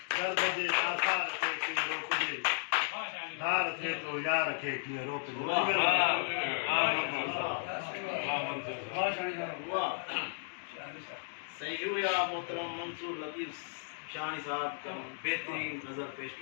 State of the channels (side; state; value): right; silent; digital silence